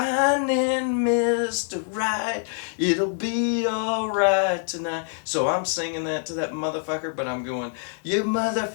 Mr. Right, it'll be alright tonight. So I'm singing that to that motherfucker, but I'm going, you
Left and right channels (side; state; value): right; silent; 62 dB below the other